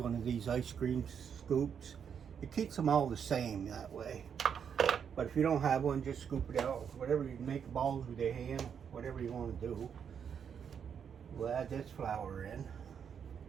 of these ice cream scoops. It keeps them all the same that way. But if you don't have one, just scoop it out. Whatever you make balls with your hand, whatever you want to do. We'll add this flour in.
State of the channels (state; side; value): quieter; left; 7.5 dB